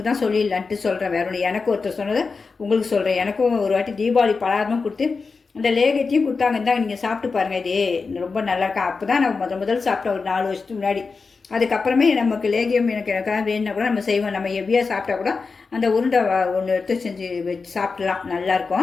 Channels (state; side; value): quieter; right; 4.6 dB